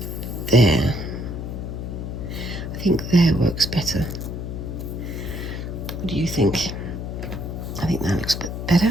there. I think there works better. What do you think? I think that looks a bit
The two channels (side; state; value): left; noise; hum, 6 dB below the sound